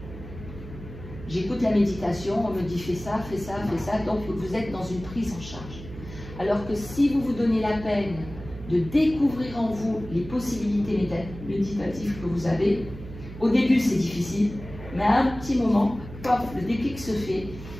J'écoute la méditation, on me dit fais ça, fais ça, fais ça, donc vous êtes dans une prise en charge. Alors que si vous vous donnez la peine de découvrir en vous les possibilités méditatives que vous avez, au début c'est difficile, mais à un petit moment, pop, le déclic se fait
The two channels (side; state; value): right; noise; hum, 13 dB below the sound